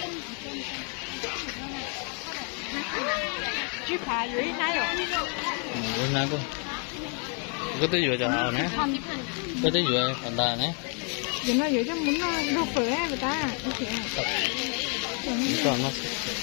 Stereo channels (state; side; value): quieter; right; 39.4 dB